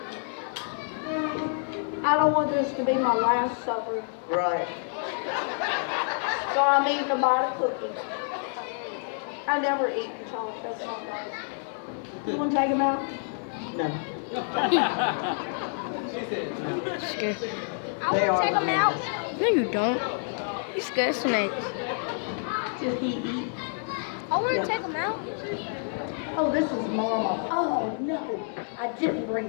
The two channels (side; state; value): right; silent; 59 dB below the other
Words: I don't want this to be my last supper. Right. So I'm eating a bite of cookie. I never eat chocolate. That's not right. You want to take them out? No. I want to take them out. No, you don't. You scared snake. Did he eat? I want to take them out. Oh, this is Mama. Oh, no. I didn't